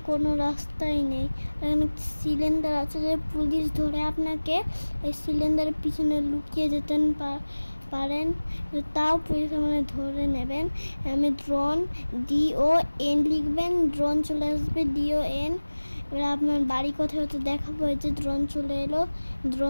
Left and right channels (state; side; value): inverted; both; correlation -1.00